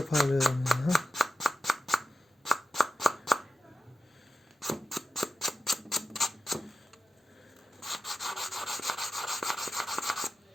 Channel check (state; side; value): normal; both; correlation 0.92